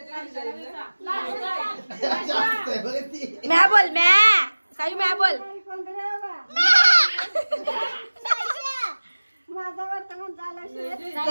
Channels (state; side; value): inverted; both; correlation -1.00